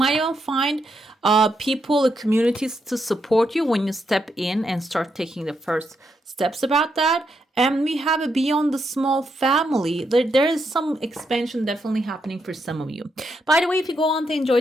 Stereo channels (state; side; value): normal; both; correlation 0.81